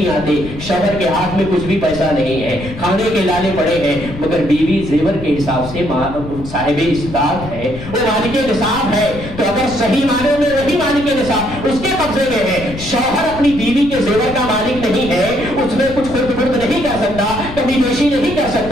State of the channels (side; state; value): left; noise; rumble, 11 dB below the sound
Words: آتے، شوہر کے ہاتھ میں کچھ بھی پیسہ نہیں ہے، کھانے کے لالے پڑے ہیں، مگر بیوی زیور کے حساب سے صاحب استطاعت ہے، وہ مالک نصاب ہے، تو اگر صحیح معنوں میں وہی مالک نصاب اس کے قبضے میں ہے، شوہر اپنی بیوی کے زیور کا مالک نہیں ہے، اس میں کچھ خرد برد نہیں کر سکتا، کمی بیشی نہیں کر